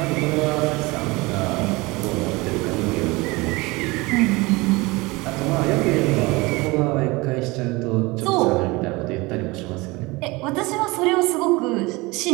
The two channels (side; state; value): left; quieter; 23.4 dB